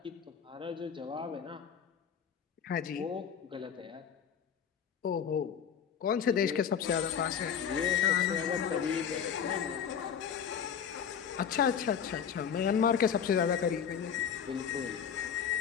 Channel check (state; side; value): quieter; right; 7.8 dB